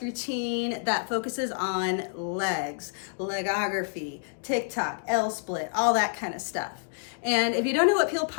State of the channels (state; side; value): silent; right; digital silence